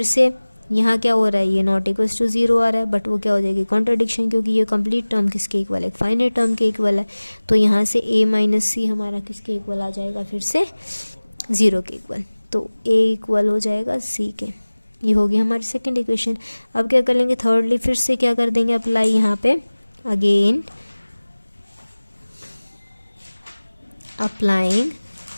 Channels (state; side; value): inverted; both; correlation -1.00